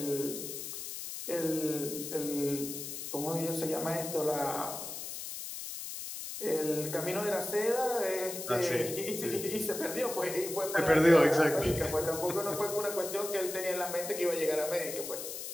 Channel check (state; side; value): noise; left; hiss, 7 dB below the sound